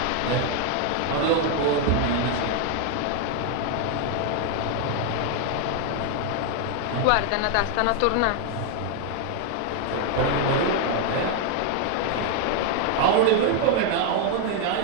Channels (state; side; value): different; both; correlation 0.00